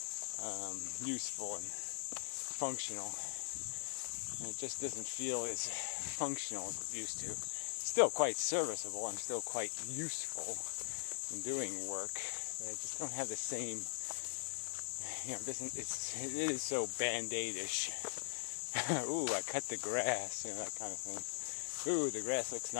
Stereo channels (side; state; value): right; silent; digital silence